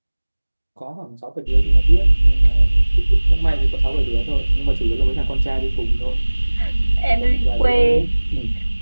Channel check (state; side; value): inverted; both; correlation -1.00